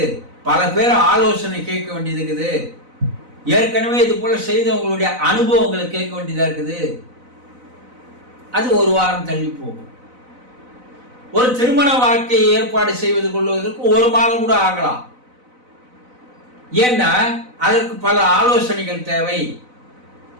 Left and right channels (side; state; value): left; late; 4.0 ms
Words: பல பேர் ஆலோசனை கேட்க வேண்டியது இருக்குது, ஏற்கனவே இது போல செய்தவங்களுடைய அனுபவங்களை கேட்க வேண்டியதா இருக்குது, அது ஒரு வாரம் தள்ளி போகும். ஒரு திருமண வாழ்க்கையை ஏற்பாடு செய்வது கொள்வதற்கு 1 மாதம் கூட ஆகலாம். ஏன்னா அதற்கு பல ஆலோசனைகள் தேவை,